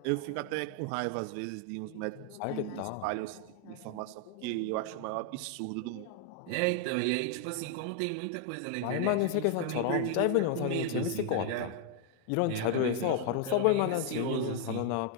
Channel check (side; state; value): both; different; correlation 0.00